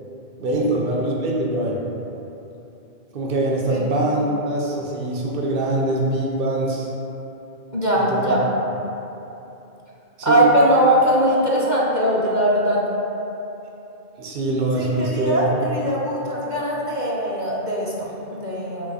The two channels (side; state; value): left; late; 2.1 ms